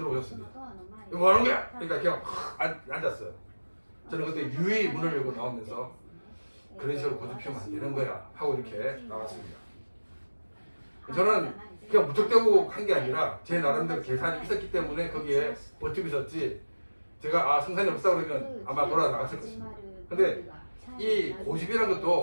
이거 뭐 하는 거야? 그러니까 그냥 앉았어요. 저는 그때 유의 문을 열고 나오면서 그런 식으로 고집 피우면 안 되는 거야 하고 이렇게 나왔습니다. 저는 그냥 무턱대고 한 게 아니라 제 나름대로 계산이 있었기 때문에 거기에 버티고 있었지 제가 성산이 없다 그러면 아마 돌아 나갔을 것입니다. 근데 이 고집이라는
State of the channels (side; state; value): both; inverted; correlation -1.00